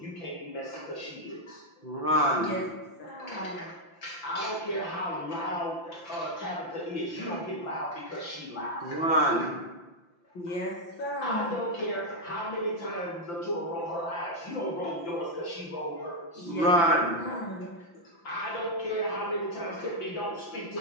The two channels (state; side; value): late; right; 5.9 ms